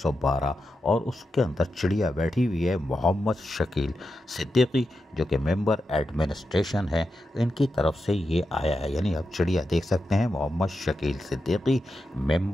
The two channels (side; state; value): both; normal; correlation 0.88